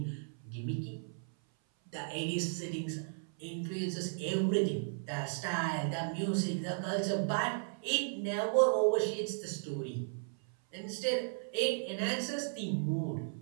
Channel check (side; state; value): left; silent; 54 dB below the other